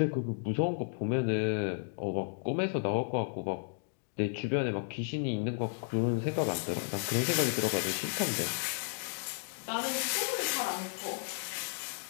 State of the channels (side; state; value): right; silent; digital silence